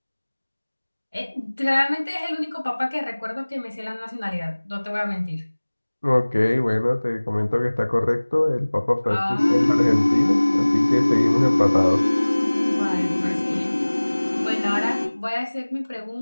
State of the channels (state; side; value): inverted; both; correlation -1.00